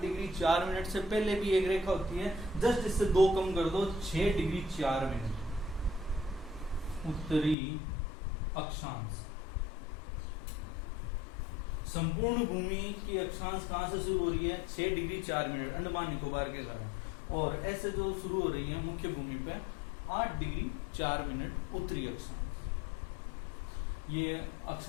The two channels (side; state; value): right; drops out; at 7.6 s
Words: डिग्री 4 मिनट से पहले भी एक रेखा होती है, जस्ट इससे 2 कम कर दो, 6 डिग्री 4 मिनट उत्तरी अक्षांश। संपूर्ण भूमि की अक्षांश कहां से शुरू हो रही है, 6 डिग्री 4 मिनट अंडमान निकोबार के कारण, और ऐसे जो शुरू हो रही है मुख्य भूमि पे 8 डिग्री 4 मिनट उत्तरी अक्षांश। ये